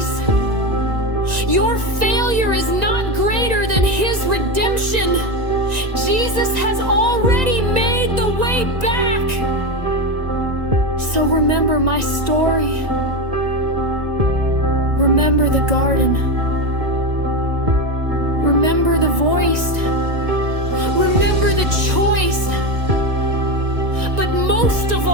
Your failure is not greater than his redemption. Jesus has already made the way back. So remember my story. Remember the garden. Remember the voice. Remember the choice. But most of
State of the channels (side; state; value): left; late; 1.9 ms